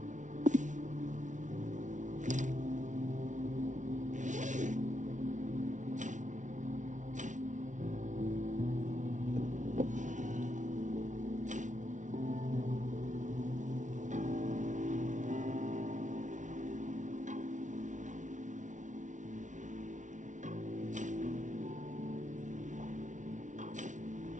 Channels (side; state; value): left; late; 0.37 ms